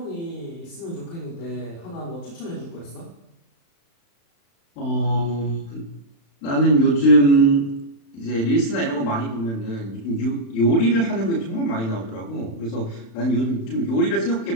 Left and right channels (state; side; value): late; right; 35 ms